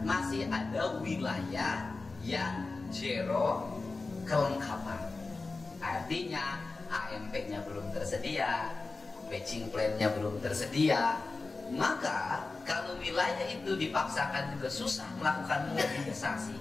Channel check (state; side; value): quieter; right; 3.7 dB